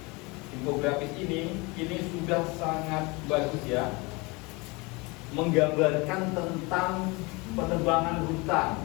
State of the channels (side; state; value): right; quieter; 26.3 dB